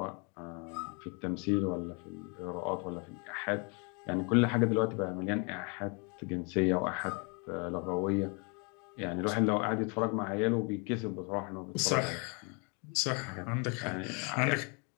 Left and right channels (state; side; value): quieter; right; 34.1 dB